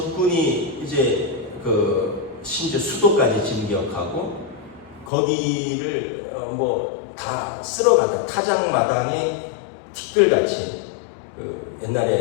이제 심지어 수도까지 진격하고 거기를 뭐 다 쓸어간다. 타작마당에 티끌같이,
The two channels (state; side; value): drops out; right; at 5.1 s